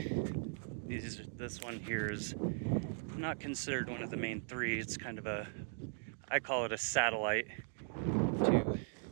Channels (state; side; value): silent; left; digital silence